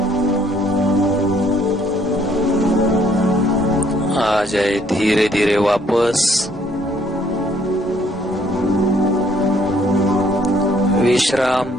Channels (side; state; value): both; normal; correlation 0.64